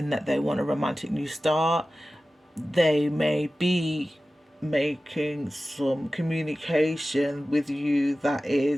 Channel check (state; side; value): normal; both; correlation 0.95